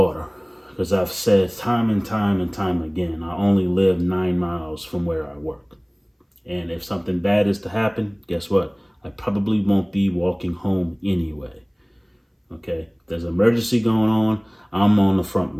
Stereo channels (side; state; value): both; identical; correlation 1.00